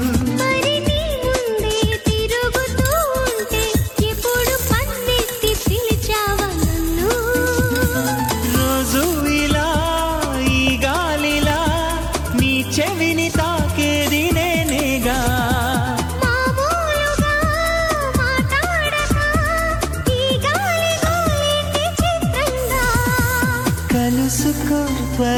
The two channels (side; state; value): both; identical; correlation 1.00